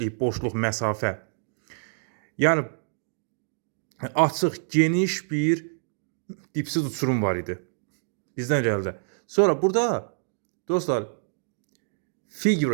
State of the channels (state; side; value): silent; left; digital silence